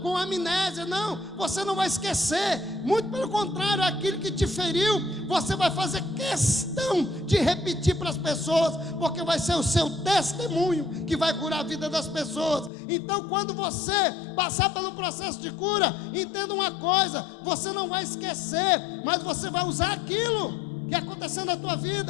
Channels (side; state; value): right; drops out; at 12.7 s